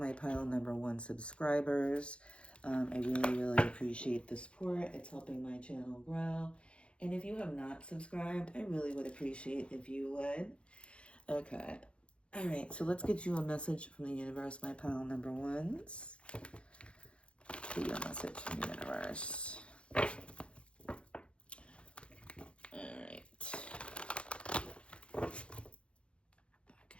pile number 1 subscribers. I really appreciate the support. It's helping my channel grow. And if you have not subscribed, I really would appreciate if you would. Okay. All right, so let's get you a message from the universe, my pile number 1s. Get you a message from the universe. All right. Okay.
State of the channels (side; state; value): right; late; 0.058 ms